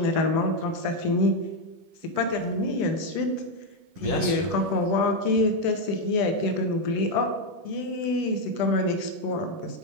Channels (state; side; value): late; left; 10 ms